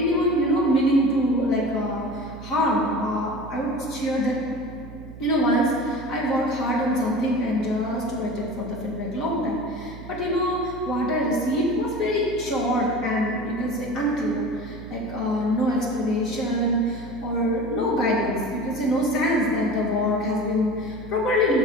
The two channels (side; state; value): right; noise; hum, 14 dB below the sound